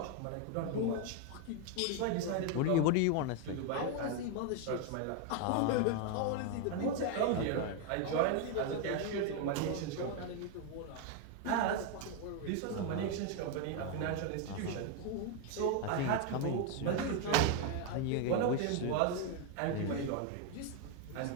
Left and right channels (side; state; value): both; different; correlation 0.01